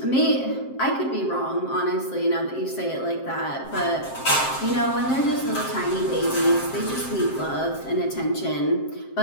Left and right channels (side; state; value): right; late; 7.6 ms